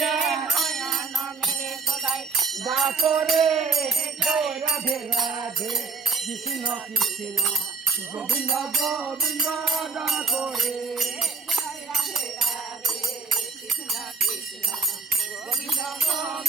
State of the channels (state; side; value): quieter; left; 4.6 dB